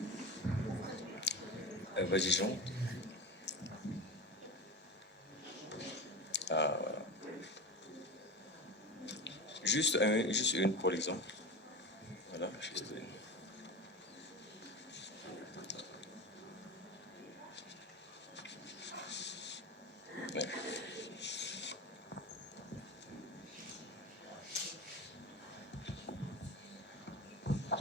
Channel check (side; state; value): both; normal; correlation 0.26